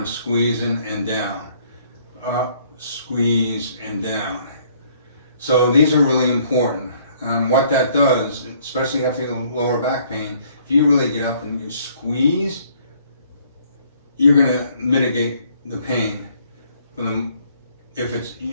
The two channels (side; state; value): both; inverted; correlation -0.62